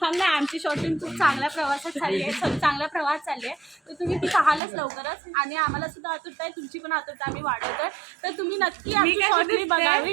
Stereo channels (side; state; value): left; drops out; at 4.6 s